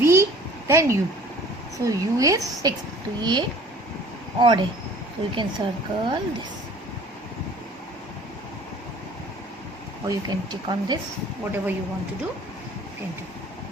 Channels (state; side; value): normal; both; correlation 0.49